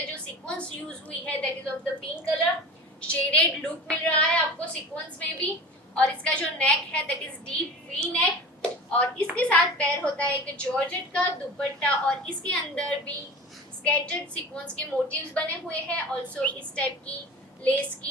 जो सीक्वेंस यूज हुई है that is of the pink colour. Shaded look मिल रहा है आपको सीक्वेंस में भी। और इसका जो नेक है that is deep V neck. और इसके साथ पैर होता है एक जॉर्जेट का दुपट्टा और इसके अंदर भी स्केटर्ड सीक्वेंस के मोटिव्स बने हुए हैं। ऑल्सो इस टाइप की लेस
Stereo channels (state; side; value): normal; both; correlation 0.36